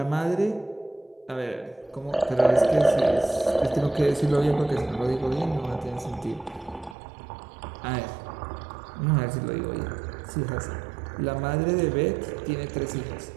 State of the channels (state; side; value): drops out; left; at 7.0 s